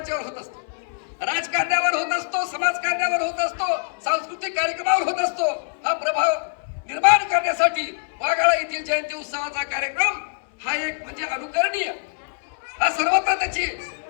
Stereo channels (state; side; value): silent; right; 59 dB below the other